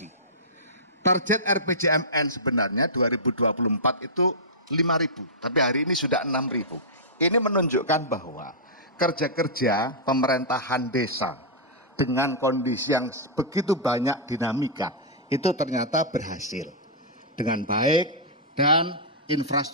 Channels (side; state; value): both; normal; correlation -0.13